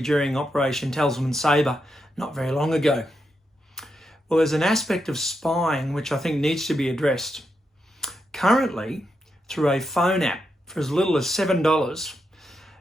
during Operation Tasman Sabre not very long ago. Well, there's an aspect of spying which I think needs to be addressed. Currently, through a phone app for as little as $7,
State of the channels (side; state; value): both; normal; correlation 0.84